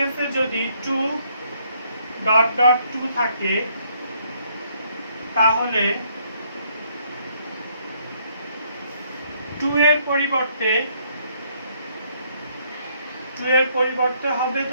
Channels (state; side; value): inverted; both; correlation -0.69